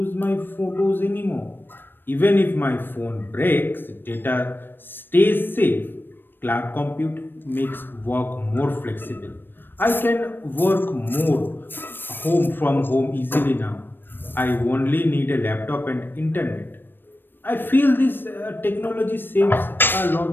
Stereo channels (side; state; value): right; late; 0.096 ms